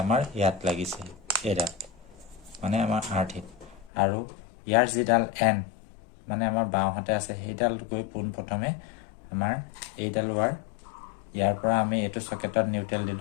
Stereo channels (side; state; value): right; drops out; at 3.9 s